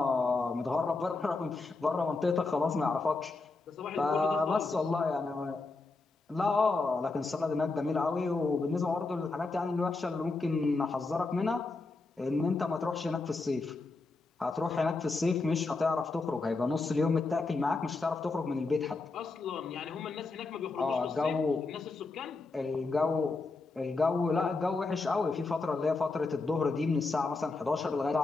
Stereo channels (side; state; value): right; quieter; 3.7 dB